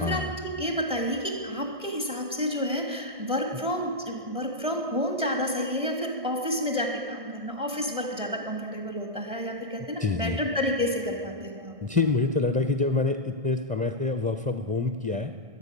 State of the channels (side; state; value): left; late; 1.6 ms